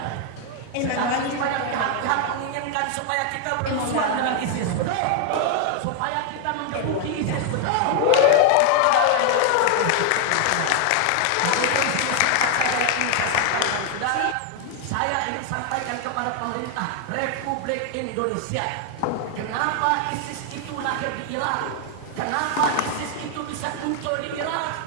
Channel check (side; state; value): both; different; correlation 0.00